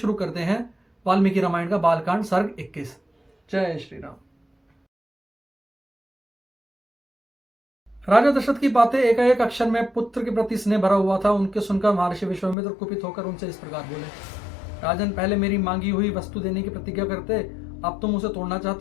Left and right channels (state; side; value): drops out; right; at 12.6 s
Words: करते हैं वाल्मीकि रामायण का बालकांड सर्ग 21। जय श्री राम। राजा दशरथ की बातें एक अक्षर में पुत्र के प्रति स्नेह भरा हुआ था। उनके सुनकर महर्षि विश्वामित्र कुपित होकर उनसे इस प्रकार बोले, राजन, पहले मेरी मांगी हुई वस्तु देने की प्रतिज्ञा करते, अब तुम उसे तोड़ना